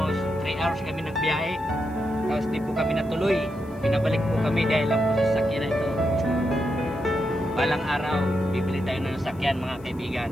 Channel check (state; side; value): noise; left; hiss, 29 dB below the sound